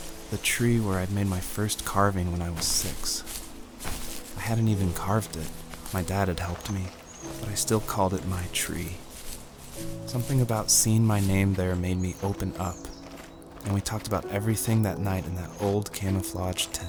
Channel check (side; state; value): both; identical; correlation 1.00